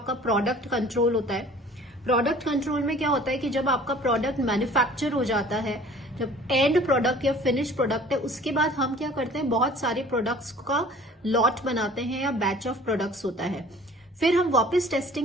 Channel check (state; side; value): normal; both; correlation 0.49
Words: प्रोडक्ट कंट्रोल होता है। प्रोडक्ट कंट्रोल में क्या होता है कि जब आपका प्रोडक्ट मैन्युफैक्चर हो जाता है, जब एंड प्रोडक्ट या फिनिश प्रोडक्ट है, उसके बाद हम क्या करते हैं, बहुत सारे प्रोडक्ट्स का लॉट बनाते हैं या बैच ऑफ प्रोडक्ट्स होता है। फिर हम वापस